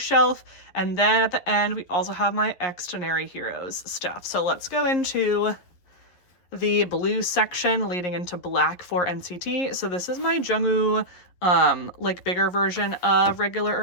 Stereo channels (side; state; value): right; late; 11 ms